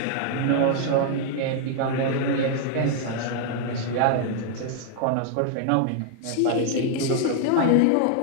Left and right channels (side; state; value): both; different; correlation 0.00